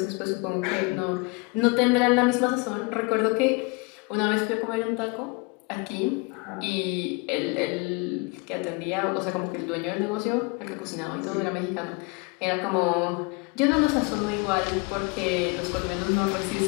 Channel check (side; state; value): right; quieter; 28.8 dB